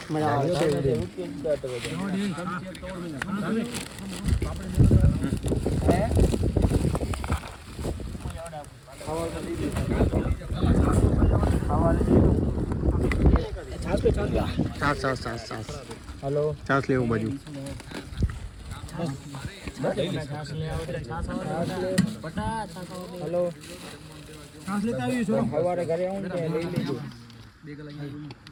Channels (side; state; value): both; identical; correlation 1.00